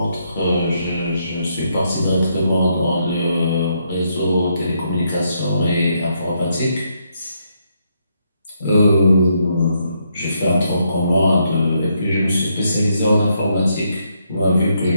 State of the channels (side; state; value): both; inverted; correlation -0.76